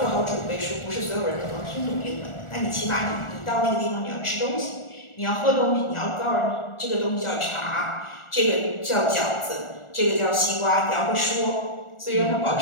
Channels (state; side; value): late; right; 1.4 ms